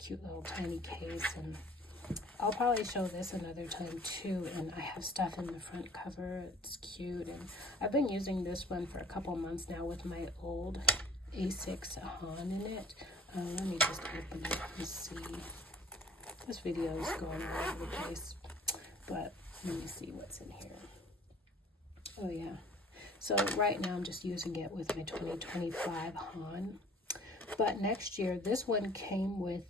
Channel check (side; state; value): both; normal; correlation 0.51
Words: little tiny case. And I'll probably show this another time too. And I have stuff in the front cover. It's cute. And I've been using this one for a couple months now with my old A6 Han in it. Let me just open it and see. This video is going all over the place, but let me see what's in here. Oh yeah. So right now I'm just using it with my 2025 Han. But next year, this one came with